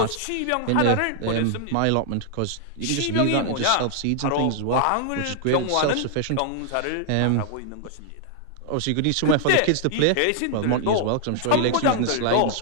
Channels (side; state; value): both; different; correlation 0.00